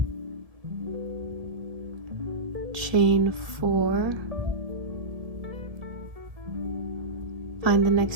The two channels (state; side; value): late; left; 1.7 ms